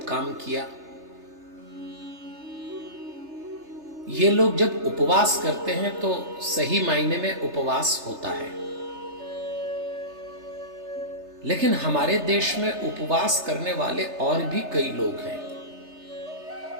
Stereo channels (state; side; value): late; left; 3.3 ms